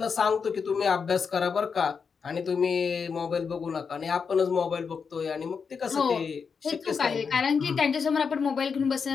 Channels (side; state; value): right; quieter; 5.8 dB